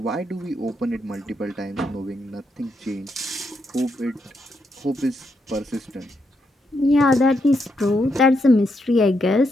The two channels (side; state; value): both; normal; correlation 0.80